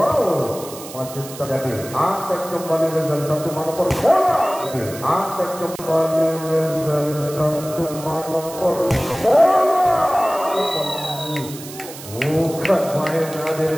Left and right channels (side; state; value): right; noise; hiss, 14 dB below the sound